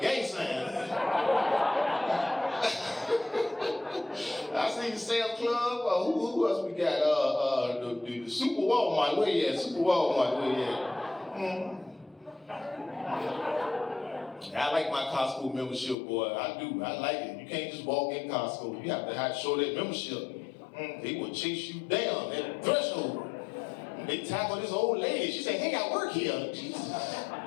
sign. I see Sam's Club. Who else we got? The Super Walmart. Where you at? Super Walmart. Where you at? I like my Costco membership, boy. I do. I like it. You can't just walk in Costco. You have to show that membership. They would chase you down at the threshold. They tackled this old lady. She said, hey, I work here. Jesus.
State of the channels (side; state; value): right; drops out; at 16.0 s